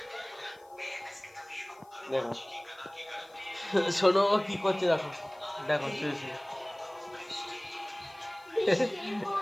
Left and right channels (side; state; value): left; noise; hiss, 30 dB below the sound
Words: দেখো শোনো কি করছে, দেখো দেখো শুয়েছে।